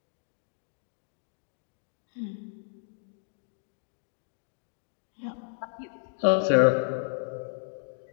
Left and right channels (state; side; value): silent; right; digital silence